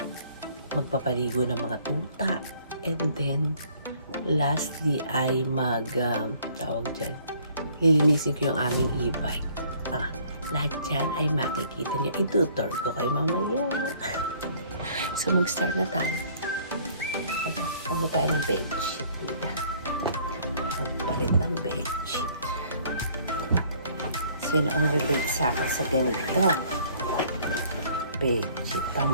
magpapaligo ng mga tuta. And then, lastly ay tawag dyan, lilinisin ko yung aming e-bike. Lahat dyan ay makikita nyo. Itutur ko kayo mamaya. So, mag-start na tayo. Ano tayo ng bedsheet? Magpalit ng bedsheet. Sino ang relate sa akin sa ganito? Bedsheet.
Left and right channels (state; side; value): inverted; both; correlation -0.58